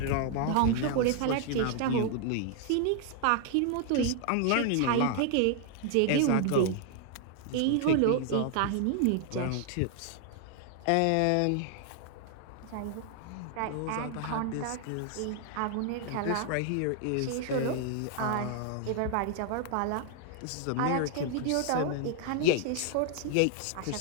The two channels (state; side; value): different; both; correlation 0.00